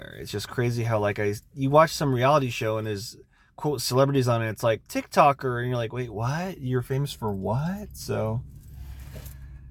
It's just crazy how like you watch some reality show and there's quote celebrities on it. It's like TikToker, and you're like, wait, what? You're famous for what? So.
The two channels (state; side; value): identical; both; correlation 1.00